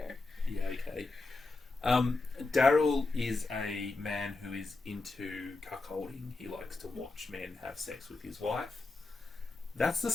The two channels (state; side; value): quieter; right; 3.5 dB